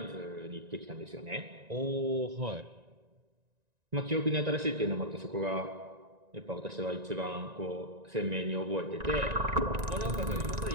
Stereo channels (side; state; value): left; late; 1.9 ms